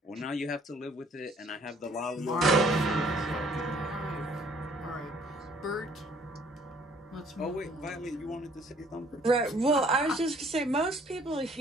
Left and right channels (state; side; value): normal; both; correlation 0.59